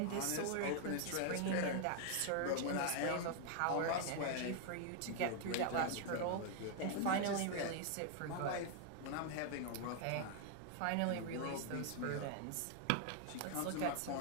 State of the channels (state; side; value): different; both; correlation 0.00